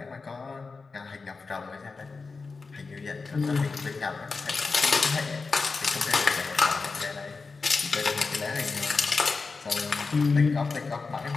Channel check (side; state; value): right; quieter; 4.3 dB